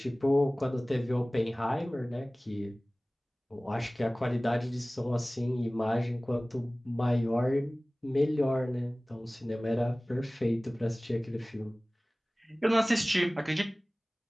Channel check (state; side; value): normal; both; correlation 0.98